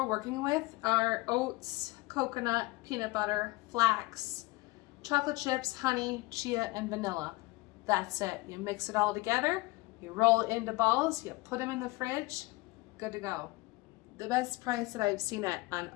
working with are oats, coconut, peanut butter, flax, chocolate chips, honey, chia, and vanilla. That's it. You mix it all together, you roll it into balls, you put them in the fridge, good to go. The best price that I've seen on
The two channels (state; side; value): quieter; right; 22.1 dB